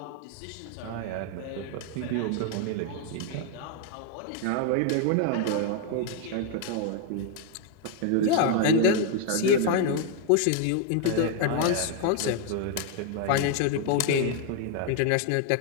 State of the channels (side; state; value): both; different; correlation 0.00